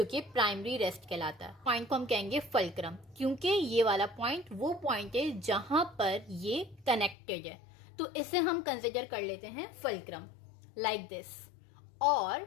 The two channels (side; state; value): right; drops out; at 7.2 s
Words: कि प्राइमरी रेस्ट कहलाता है। पॉइंट को हम कहेंगे फुलक्रम, क्योंकि ये वाला पॉइंट वो पॉइंट है जहां पर ये कनेक्टेड है, तो इसे हम कंसिडर कर लेते हैं फुलक्रम, लाइक दिस। और